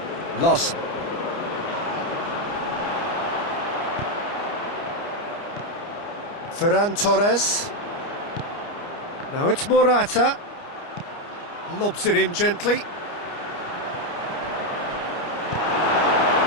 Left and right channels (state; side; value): late; right; 29 ms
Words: Larsson. Ferran Torres. Now it's Morata. Lobs it in gently.